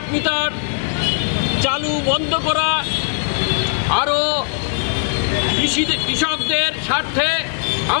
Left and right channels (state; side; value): silent; right; 62 dB below the other